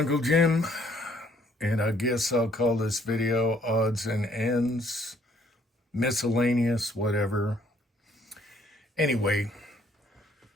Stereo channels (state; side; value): normal; both; correlation 0.64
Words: Jim, and I guess I'll call this video odds and ends, miscellaneous, whatever. Anyway,